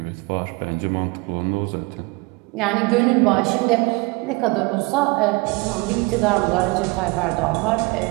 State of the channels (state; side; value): quieter; left; 25.9 dB